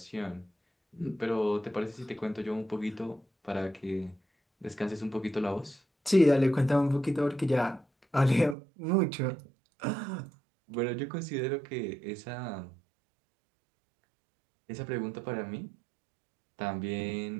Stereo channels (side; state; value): left; drops out; at 8.6 s